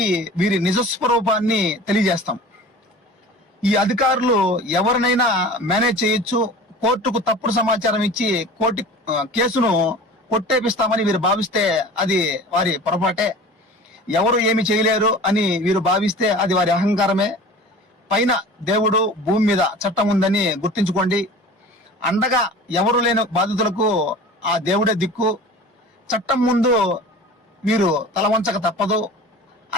వీరి నిజస్వరూపాన్ని తెలియజేస్తాం. ఈ అధికారులు ఎవరినైనా మేనేజ్ చేయొచ్చు, కోర్టుకు తప్పుడు సమాచారం ఇచ్చి కేసును కొట్టేపిస్తామని వీరు భావిస్తే అది వారి పొరపాటే. ఎవరు ఏమి చేయలేరు అని వీరు భావిస్తే అది వారి అహంకారమే. పైన దేవుడు, భూమి మీద చట్టం ఉందని గుర్తించుకోండి. అండగా ఎవరు లేని బాధితులకు ఆ దేవుడే దిక్కు. చట్టం ముందు వీరు తల వంచక తప్పదు.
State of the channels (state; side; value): normal; both; correlation 0.40